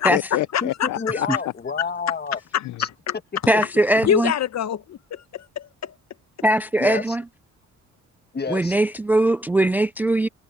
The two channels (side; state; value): both; normal; correlation 0.57